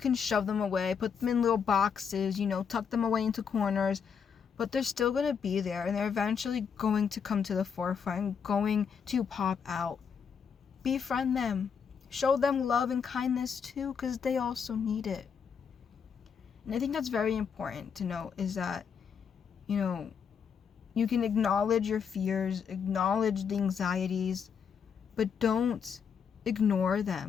shove them away, put them in little boxes, you know, tuck them away into corners, but they're still going to be there, and they're eventually going to come to the forefront, going to pop out. Befriend them. Show them love and kindness too, because they also need it. And I think that's very important to know, is that, you know, you can acknowledge your fears, acknowledge the anxieties, but don't ignore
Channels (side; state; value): right; quieter; 6.8 dB